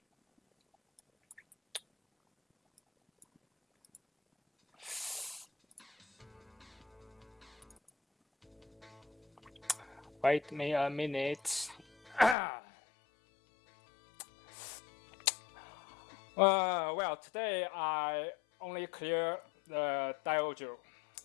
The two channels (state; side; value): drops out; right; at 12.4 s